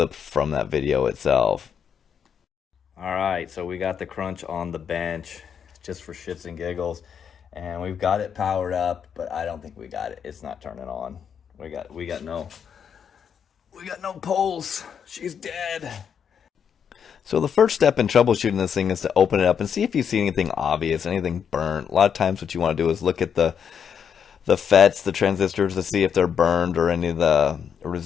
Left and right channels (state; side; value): quieter; right; 7.6 dB